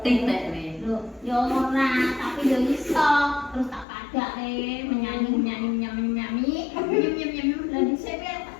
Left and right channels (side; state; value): right; drops out; at 3.9 s